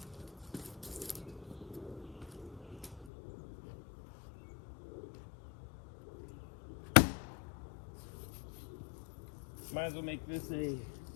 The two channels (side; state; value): right; drops out; at 3.1 s